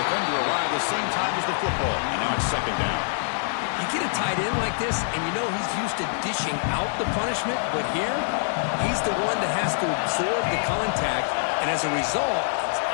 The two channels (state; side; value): silent; right; 62 dB below the other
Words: defender arrived the same time as the football. And now it's second down. You get a tight end like this, and you know he's used to dishing out the punishment. But here, he's the one that has to absorb the contact. And as a result, he's